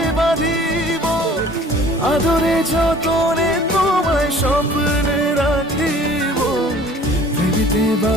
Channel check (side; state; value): both; normal; correlation 0.50